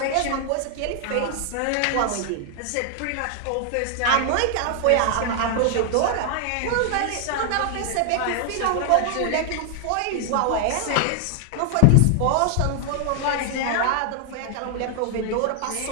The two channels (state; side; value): different; both; correlation 0.00